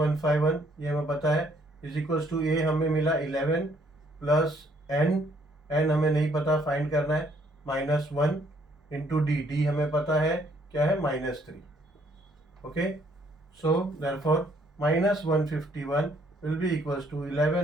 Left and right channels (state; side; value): normal; both; correlation 0.66